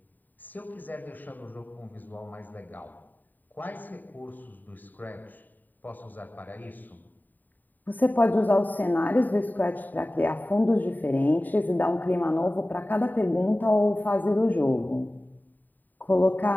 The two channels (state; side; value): late; right; 0.087 ms